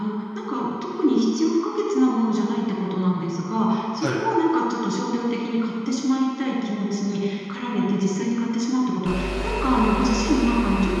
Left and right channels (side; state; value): both; identical; correlation 1.00